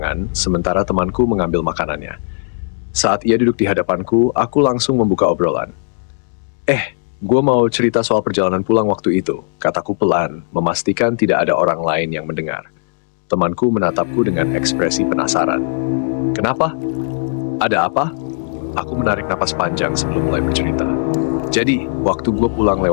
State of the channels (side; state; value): right; silent; digital silence